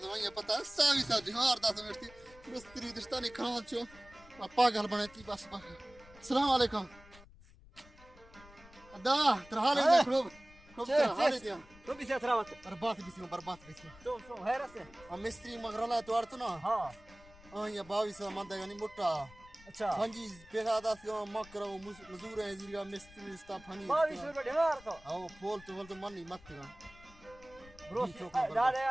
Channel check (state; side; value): noise; left; rumble, 22 dB below the sound